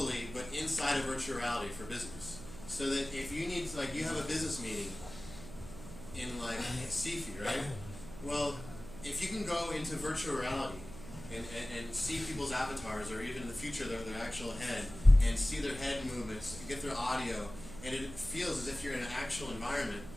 but inside of virtual reality for business. So that if you need, like, you have a business meeting in, like, Sifi, right? Well, if you can go into virtual reality and see people's avatars, or even in the future their actual head, and see their head movements, get their audio, and it feels as if you're in an actual environment,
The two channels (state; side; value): noise; right; hum, 14 dB below the sound